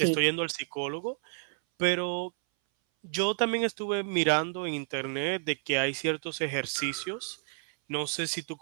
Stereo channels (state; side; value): silent; left; 58 dB below the other